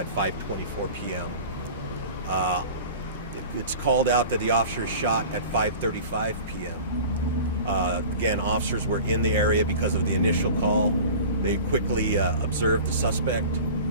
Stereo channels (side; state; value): both; inverted; correlation -0.38